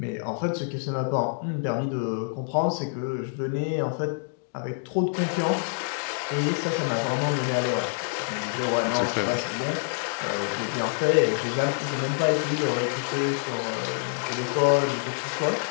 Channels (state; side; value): silent; right; digital silence